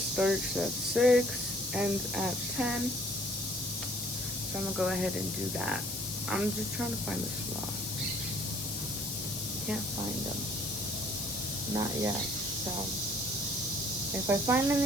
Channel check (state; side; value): noise; left; hiss, 4 dB below the sound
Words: starts at 6, ends at 10. So I'm gonna go ahead and do that. I'm just trying to find the sloth. Can't find them. Not yet. So if I find